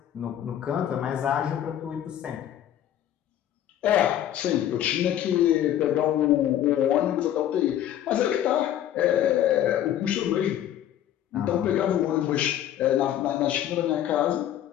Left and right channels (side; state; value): right; quieter; 11.3 dB